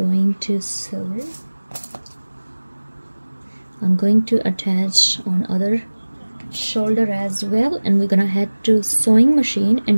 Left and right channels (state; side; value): inverted; both; correlation -1.00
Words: to sew. I'm going to attach on other shoulder as well, and we're gonna head to sewing machine,